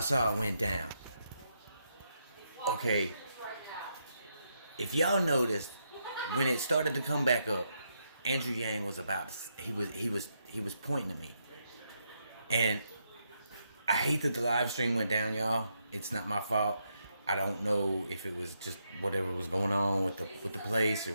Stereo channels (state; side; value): inverted; both; correlation -0.80